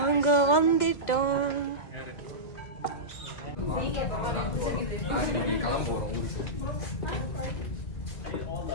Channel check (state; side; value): late; right; 2.1 ms